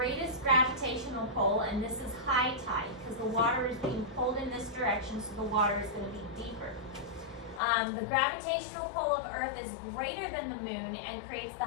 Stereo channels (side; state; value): right; drops out; at 7.6 s